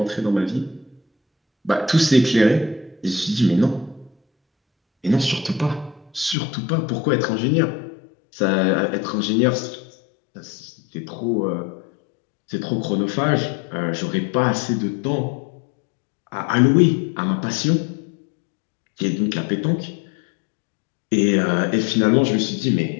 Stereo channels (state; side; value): drops out; right; at 6.4 s